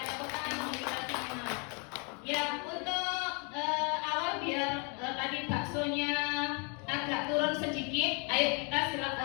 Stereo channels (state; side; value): quieter; right; 35.0 dB